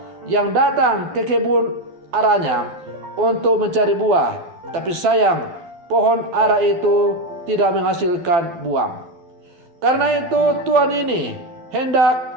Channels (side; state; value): left; late; 12 ms